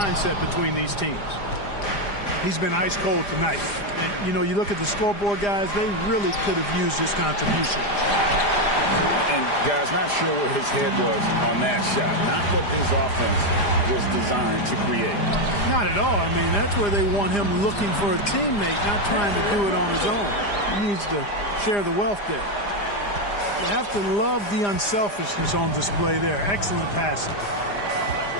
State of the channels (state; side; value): late; right; 4.9 ms